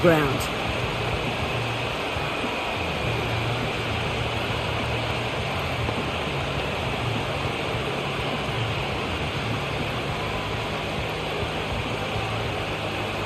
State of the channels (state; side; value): identical; both; correlation 1.00